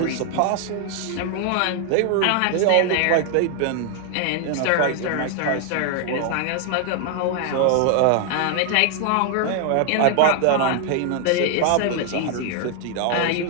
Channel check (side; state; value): both; different; correlation 0.00